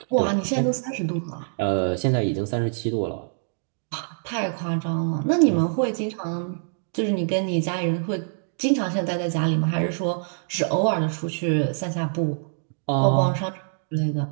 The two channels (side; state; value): left; silent; digital silence